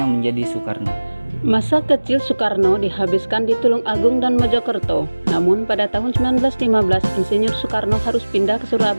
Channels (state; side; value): inverted; both; correlation -1.00